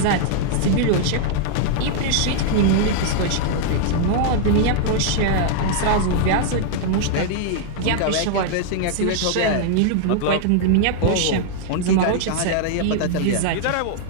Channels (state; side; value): different; both; correlation -0.01